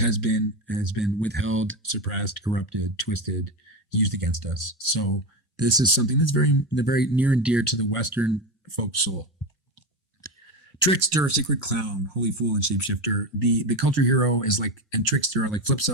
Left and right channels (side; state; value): both; normal; correlation 0.17